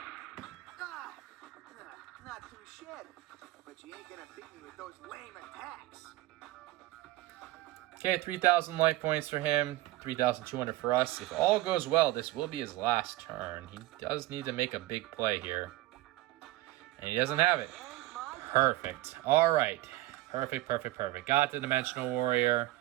Not too shit, but you ain't gonna beat me with those lame attacks. Okay, 3,000 life points for him, 3,200 for us. If all goes well, this will be his last turn. He does need to make a big play here. And he doesn't have it. Perfect. All right. Perfect, perfect, perfect. Got the Dimensional Warrior.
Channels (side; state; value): left; quieter; 17.0 dB